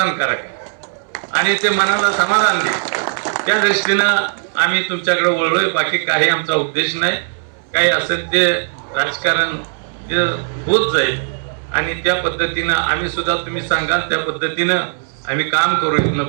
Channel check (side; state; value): left; silent; 66 dB below the other